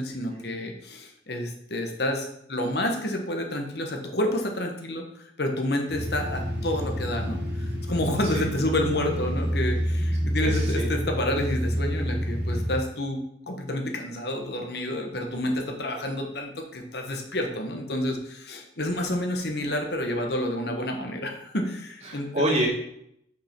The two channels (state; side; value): normal; both; correlation 0.54